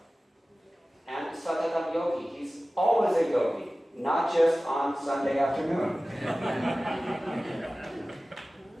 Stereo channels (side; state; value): both; normal; correlation 0.97